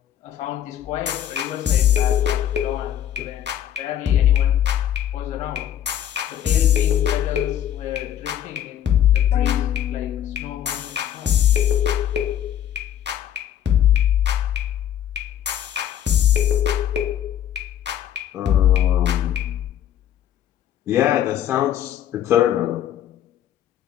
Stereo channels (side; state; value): right; quieter; 10.7 dB